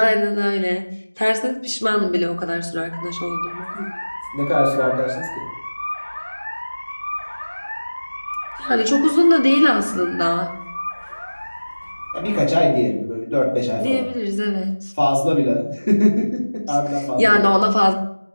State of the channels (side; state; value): both; inverted; correlation -1.00